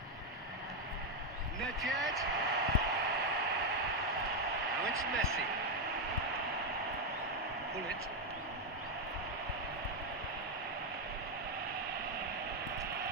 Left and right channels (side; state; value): both; normal; correlation 0.03